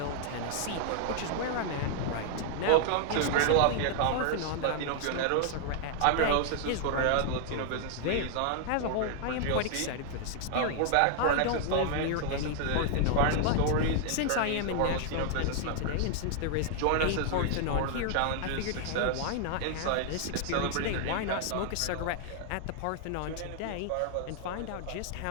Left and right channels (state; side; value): different; both; correlation 0.00